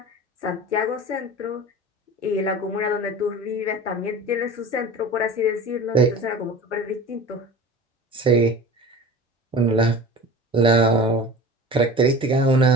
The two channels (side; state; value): both; normal; correlation 0.36